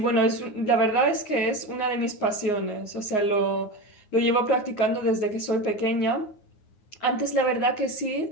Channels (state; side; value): late; right; 9.6 ms